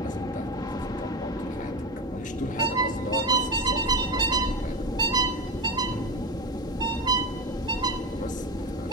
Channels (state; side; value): normal; both; correlation 0.20